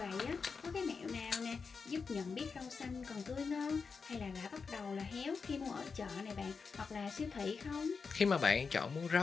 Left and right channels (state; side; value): quieter; right; 5.2 dB